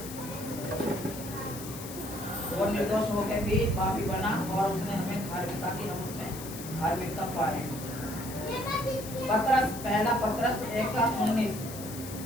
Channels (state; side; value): noise; left; hiss, 12 dB below the sound